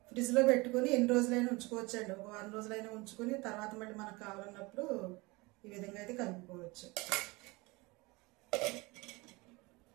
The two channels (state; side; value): quieter; left; 24.4 dB